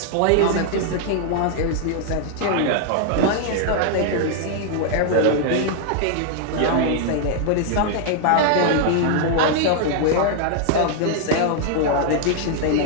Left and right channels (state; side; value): different; both; correlation 0.00